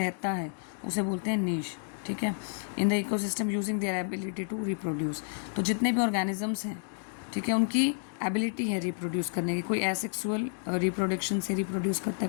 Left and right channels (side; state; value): right; silent; digital silence